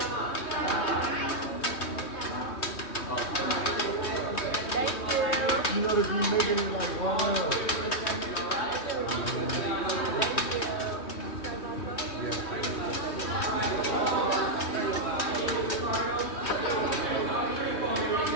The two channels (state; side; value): late; right; 3.2 ms